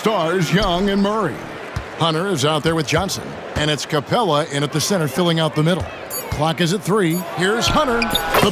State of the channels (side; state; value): both; identical; correlation 1.00